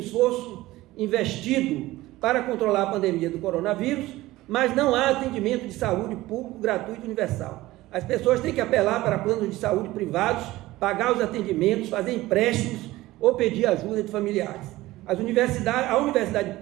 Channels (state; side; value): quieter; left; 17.7 dB